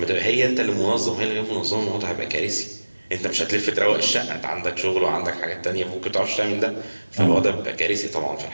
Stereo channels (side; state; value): both; inverted; correlation -1.00